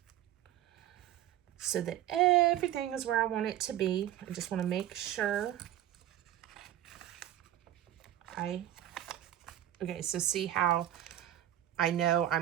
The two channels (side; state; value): left; quieter; 12.5 dB